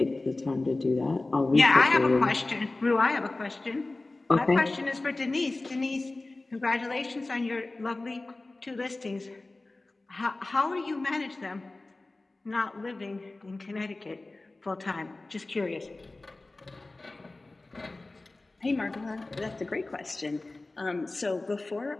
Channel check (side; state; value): right; quieter; 3.1 dB